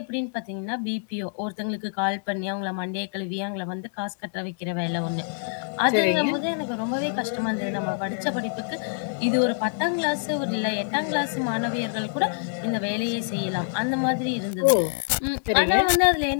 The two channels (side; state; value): right; silent; 61 dB below the other